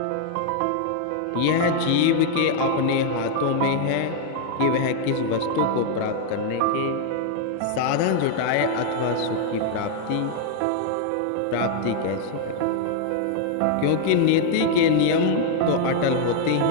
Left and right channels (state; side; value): different; both; correlation 0.00